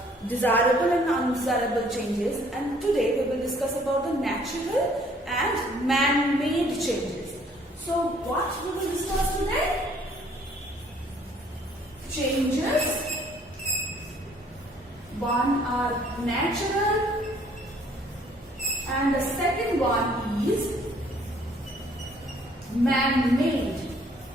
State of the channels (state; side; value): normal; both; correlation 0.60